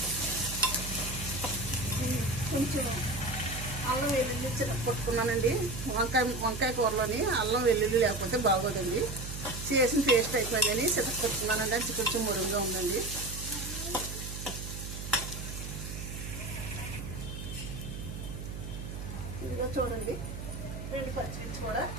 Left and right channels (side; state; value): right; noise; hum, 7 dB below the sound